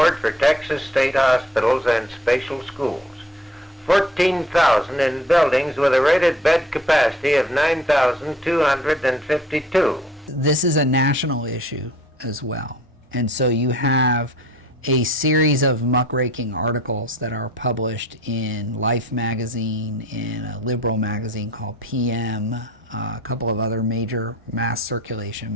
for Texas State Hospitals and Special Schools. 14,000 in buildings with a rated bed capacity of 9,252. This is a national issue as well. And so you have a series of muckraking articles that are published in Life magazine, in a liberal magazine called PM, a couple of other major mass circulation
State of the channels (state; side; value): normal; both; correlation 0.52